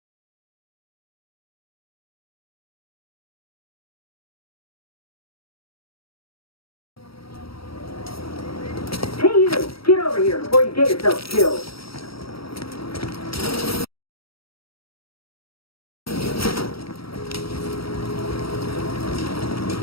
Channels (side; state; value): right; late; 0.75 ms